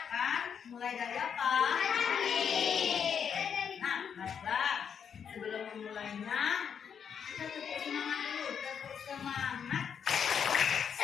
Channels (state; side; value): quieter; right; 7.4 dB